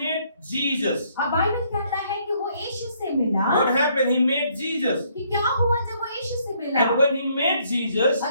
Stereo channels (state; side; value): inverted; both; correlation -0.68